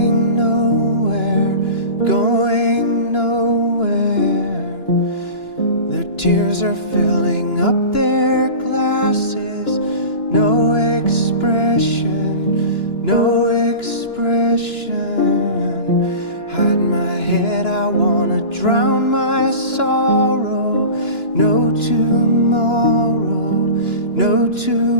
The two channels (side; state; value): right; late; 2.9 ms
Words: nowhere, going nowhere. Their tears are filling up their glasses, no expression, no expression. Hide my head, I wanna drown my sorrow. No tomorrow, no